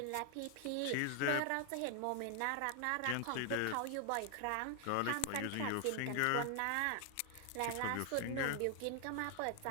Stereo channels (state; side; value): different; both; correlation 0.00